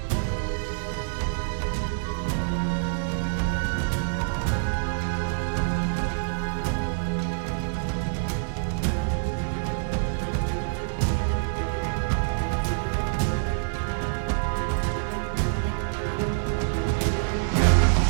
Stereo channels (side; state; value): left; silent; digital silence